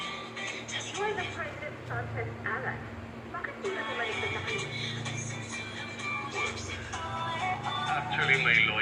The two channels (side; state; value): both; identical; correlation 1.00